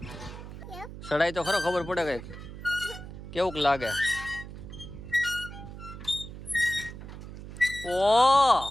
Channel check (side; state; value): right; noise; hum, 12 dB below the sound